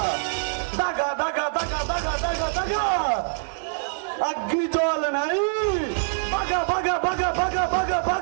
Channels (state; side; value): silent; left; digital silence